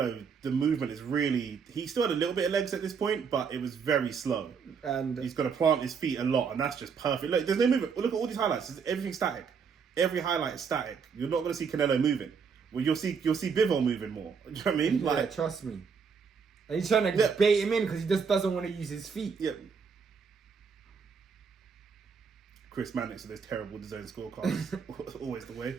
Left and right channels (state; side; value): quieter; left; 6.0 dB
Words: the movement is really. He still had a little bit of legs at this point, but it was very slow. And he's got to plant his feet a lot, and that's just perfect. Look, there's no movement. Look at all these highlights. Everything's static. Every highlight is static. You're not going to see Canelo moving. Well, you'll see Bivol moving more. Do you know what I mean? Yeah, like, trust me. And he's trying to bait him in because he just doesn't want to use his feet. Yeah. Chris Mannix with those terrible design scorecards. Always the